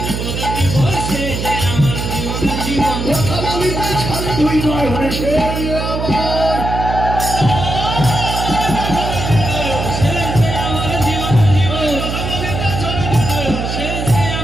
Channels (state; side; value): noise; right; hum, 3 dB below the sound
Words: যে আমার জীবনের জীবন, কথা বলিতে ছাড়ে দুই নয় হলে সে আমার সে যে আমার জীবনের জীবন, সে যে